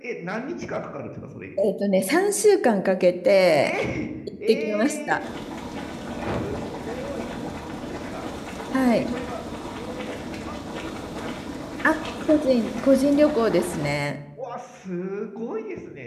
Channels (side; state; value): both; identical; correlation 1.00